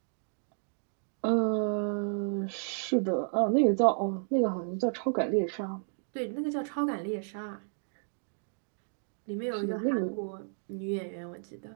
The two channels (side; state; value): left; silent; digital silence